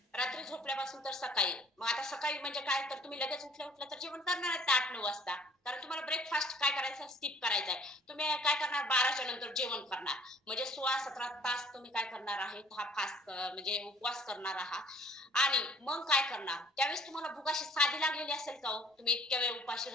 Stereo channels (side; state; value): both; normal; correlation 0.56